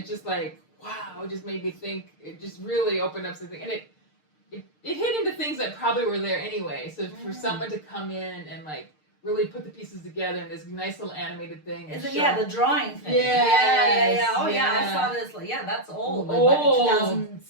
just like, wow, it just made me think, it just really opened up something. And it hit into things that probably were there anyway. So for someone to come in and like really put the pieces together in this nice little animated thing. Is and it, show- yeah, the drawing thing. Yes, Oh, yeah, I yeah. saw this. Like, yeah, that's old. Like Old. back in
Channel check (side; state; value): right; late; 6.6 ms